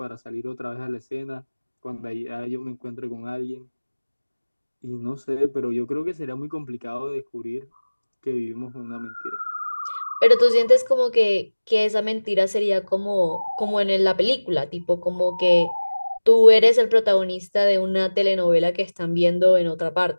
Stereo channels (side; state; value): both; inverted; correlation -1.00